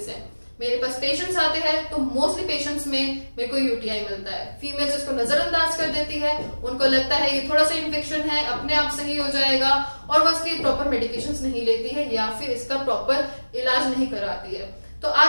हैं। मेरे पास पेशेंट्स आते हैं तो मोस्टली पेशेंट्स में मेरे को यूटीआई मिलता है। फीमेल्स इसको नजरअंदाज कर देती है, उनको लगता है ये थोड़ा सा इन्फेक्शन है, अपने आप सही हो जाएगा और वो इसकी प्रॉपर मेडिकेशंस नहीं लेती है या फिर इसका प्रॉपर इलाज नहीं कराती है। तो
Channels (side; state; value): both; inverted; correlation -1.00